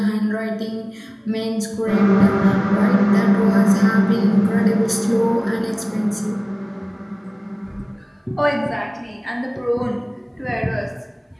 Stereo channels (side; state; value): both; identical; correlation 1.00